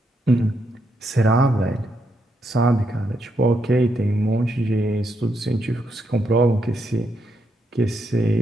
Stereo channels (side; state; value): both; normal; correlation 0.79